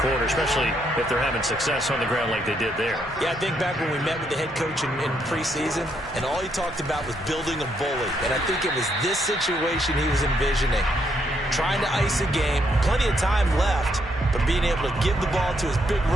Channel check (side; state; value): both; normal; correlation 0.75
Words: quarter, especially if they're having success on the ground like they did there. Yeah, I think back when we met with the head coach in preseason, and all he talked about was building a bully. And I think it was this situation he was envisioning. Trying to ice a game, plenty of time left, but being able to give the ball to his big